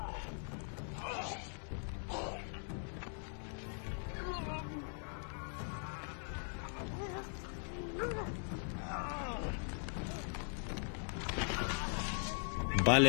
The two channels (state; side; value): silent; right; 51 dB below the other